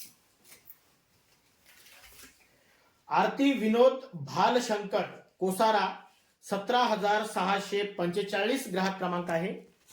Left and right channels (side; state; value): both; identical; correlation 1.00